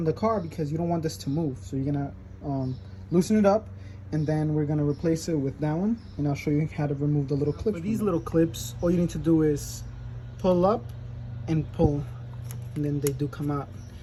the car, because you don't want this to move. So you're gonna loosen it up, and then we're gonna replace it with that one. And I'll show you how to remove the little clips. For these little clips, all you need to do is pull up and pull, and then they do come out.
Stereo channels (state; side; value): identical; both; correlation 1.00